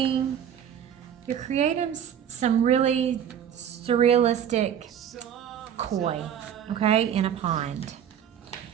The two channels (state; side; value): quieter; left; 9.1 dB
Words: some really surrealistic koi, okay, in a pond.